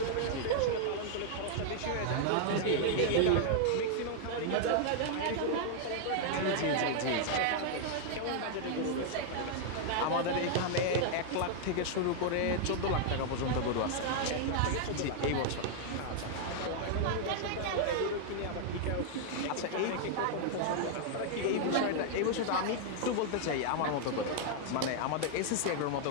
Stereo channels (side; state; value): both; different; correlation 0.00